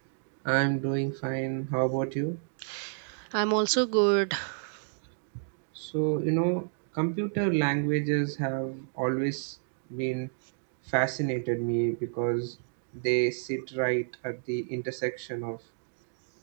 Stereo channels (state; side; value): silent; left; digital silence